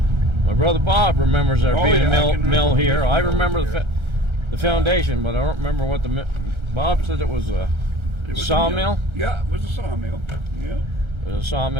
My brother Bob remembers there Oh, being yeah, a I mill, can mill remember here. this I mill remember here. the foundation, but I don't remember what Bob said it was a It was a sawmill. mill. Yeah, it was a sawmill. Yeah. It was a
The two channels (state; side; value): late; left; 1.3 ms